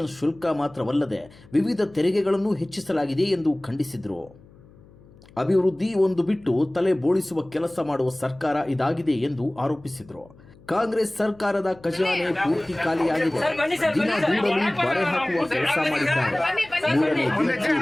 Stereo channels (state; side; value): noise; left; hum, 25 dB below the sound